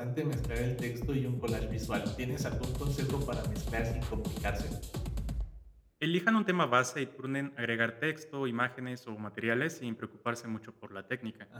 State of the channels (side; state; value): both; identical; correlation 1.00